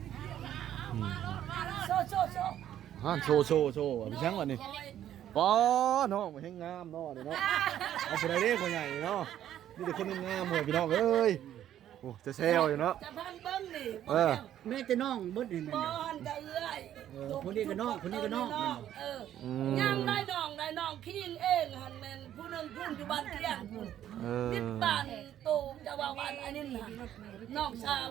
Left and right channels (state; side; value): quieter; left; 11.3 dB